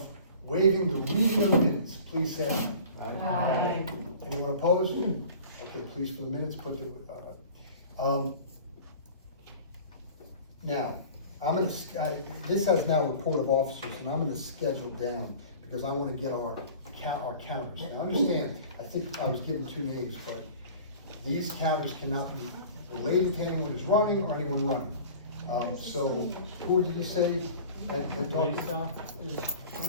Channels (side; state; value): both; inverted; correlation -0.43